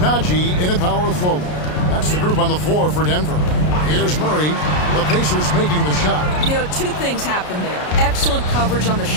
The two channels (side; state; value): right; late; 33 ms